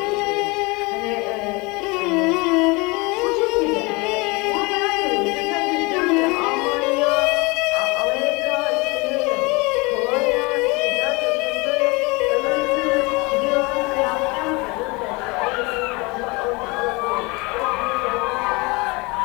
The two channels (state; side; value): quieter; right; 26.4 dB